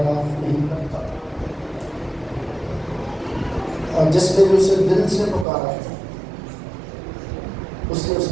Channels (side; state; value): left; drops out; at 5.5 s